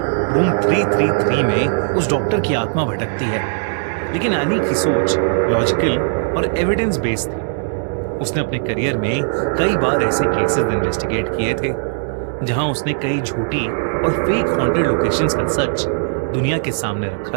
333 में उस डॉक्टर की आत्मा भटकती है। लेकिन एनी की सोच लॉजिकल और एविडेंस बेस्ड थी। उसने अपने करियर में कई बार ऐसे केसेस इन्वेस्टिगेट किए थे जहां उसने कई झूठी और फेक हॉन्टेड लोकेशंस का सच दुनिया के सामने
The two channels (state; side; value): silent; left; digital silence